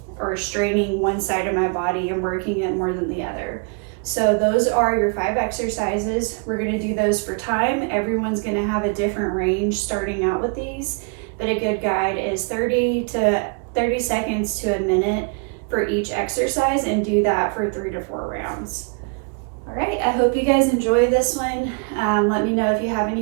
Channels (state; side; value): quieter; left; 36.9 dB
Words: or straining one side of my body and working it more than the other. So those are your 5 exercises. We're gonna do those for time. Everyone's gonna have a different range starting out with these, but a good guide is 30 seconds to a minute for each exercise, and do that for 3 to 4 rounds. All right, I hope you guys enjoy this one. Let me know if you have